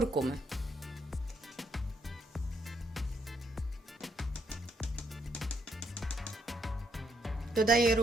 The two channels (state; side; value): normal; both; correlation 0.74